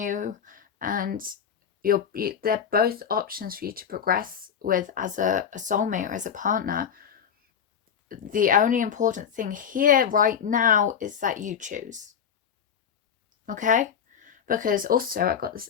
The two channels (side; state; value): right; quieter; 7.9 dB